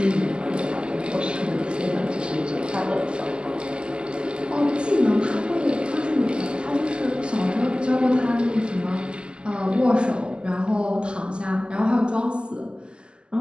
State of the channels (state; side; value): late; left; 0.049 ms